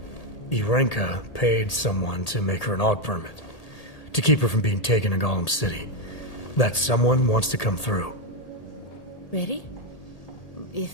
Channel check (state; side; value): late; right; 1.8 ms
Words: Arenka paid someone to make her an AUG permit. To keep her from being taken to Golem City. That someone wants to come through. Really? If